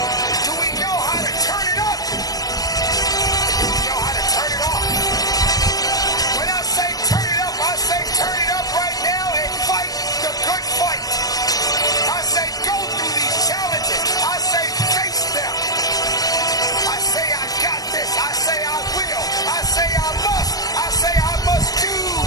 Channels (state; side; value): late; right; 0.18 ms